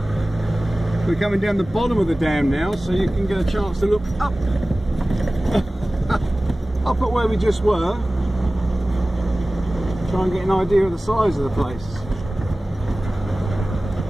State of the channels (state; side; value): normal; both; correlation 0.97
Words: We're coming down the bottom of the dam now, so you can get a chance to look up. Up at where we just were. Try and get an idea of the size of the place.